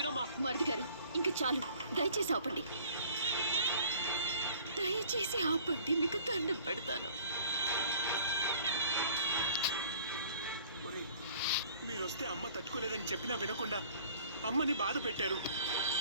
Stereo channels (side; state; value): both; inverted; correlation -0.50